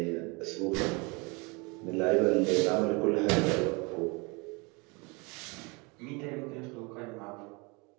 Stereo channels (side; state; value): left; quieter; 28.5 dB